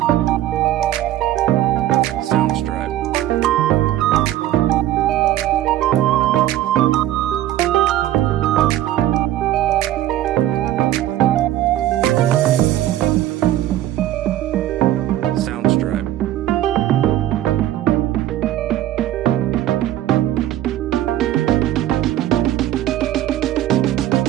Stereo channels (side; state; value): left; quieter; 13.3 dB